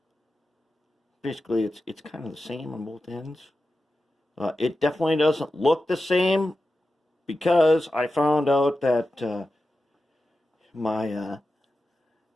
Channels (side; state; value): both; normal; correlation 0.92